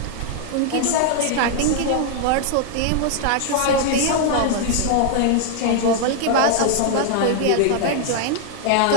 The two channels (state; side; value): different; both; correlation 0.00